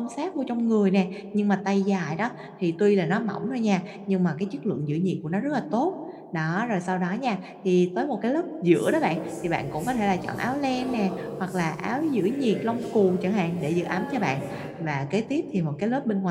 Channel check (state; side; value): identical; both; correlation 1.00